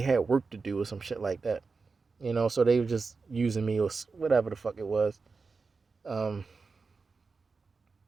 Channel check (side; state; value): left; quieter; 4.5 dB